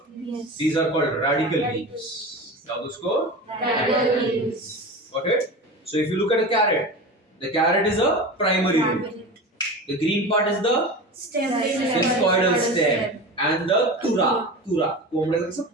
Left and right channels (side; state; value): both; normal; correlation 0.29